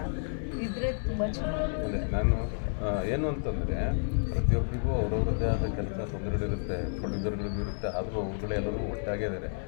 ಇದ್ದರೆ ತುಂಬ ಚೆನ್ನಾಗಿ. ಅದೇ ನಾನು ಏನು ಅಂತಂದರೆ, ಪ್ರತಿಯೊಬ್ಬರಿಗೂ ಅವ್ರವ್ರದ್ದೇ ಆದ ಕೆಲಸ ತೊಂದರೆಗಳಿರುತ್ತೆ, ಪ್ರೊಡ್ಯೂಸರ್ಗಳಿಗೂ ಇರುತ್ತೆ. ಆದರೂ ಅವ್ರುಗಳೆಲ್ಲರೂ ಒಟ್ಟಾಗೇ ಇದ್ದಾರೆ.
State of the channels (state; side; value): silent; right; digital silence